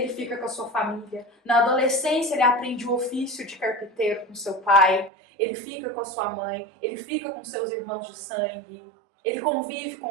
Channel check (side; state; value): left; drops out; at 5.1 s